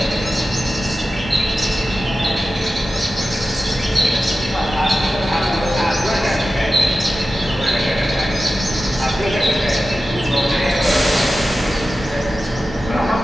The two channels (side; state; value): both; normal; correlation 0.93